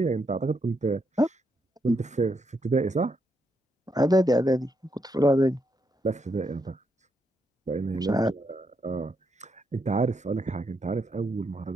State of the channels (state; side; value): normal; both; correlation 0.79